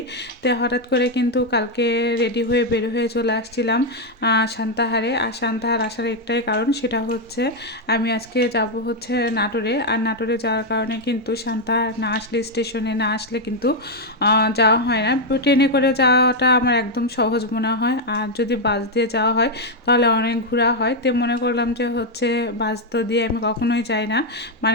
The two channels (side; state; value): both; normal; correlation 0.01